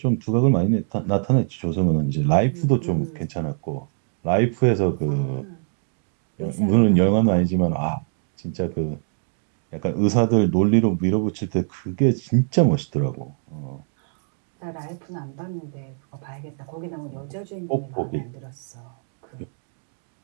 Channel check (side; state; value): left; silent; 63 dB below the other